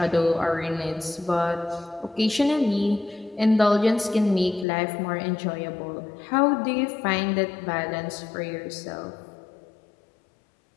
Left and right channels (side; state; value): right; drops out; at 4.7 s